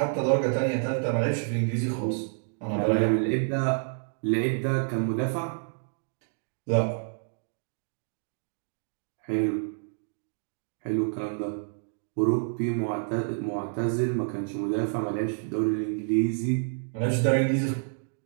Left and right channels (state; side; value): silent; left; digital silence